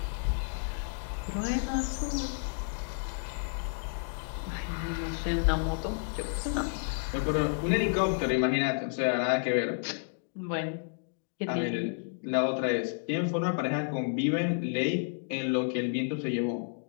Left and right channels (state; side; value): silent; right; digital silence